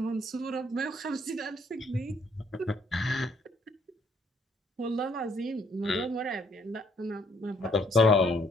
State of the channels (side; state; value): both; normal; correlation 0.65